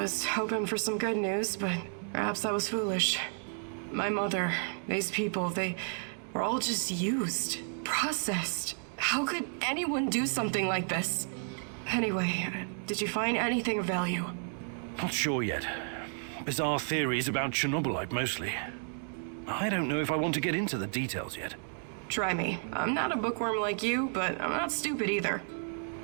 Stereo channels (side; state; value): left; silent; 56 dB below the other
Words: hoping for some good news, but perhaps I was foolish. My mother, these people, they were all just used, processed. How could anyone do something like this? Anyway, did you find anything of value? Not sure yet. Bizarre theories about Chernobylite, mostly. I don't know if I want to get into the details yet. Try me. I'm not a bookworm like you, but I'm not stupid either.